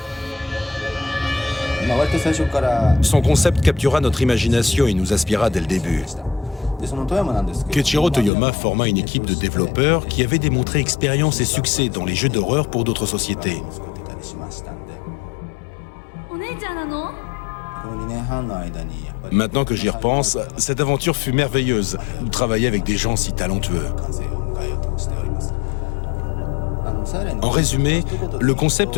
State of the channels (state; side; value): drops out; right; at 8.3 s